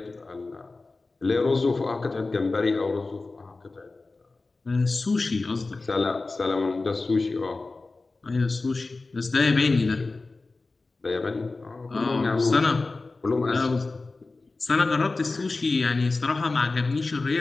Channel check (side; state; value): right; quieter; 3.5 dB